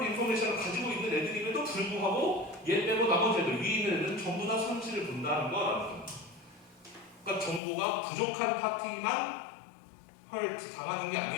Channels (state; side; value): drops out; right; at 7.6 s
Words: 인포메이션을 가지고 있는 애들임에도 불구하고 얘 빼고 나머지 애들, 위에 있는 애들은 전부 다 손실을 본다는 거라는 겁니다. 그러니까 정보가 부족한 파티만 당하는 게